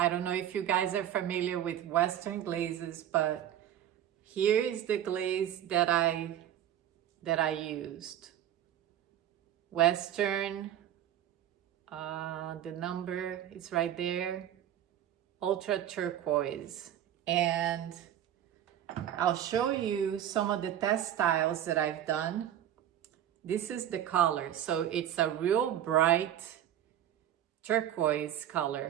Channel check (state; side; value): quieter; left; 11.0 dB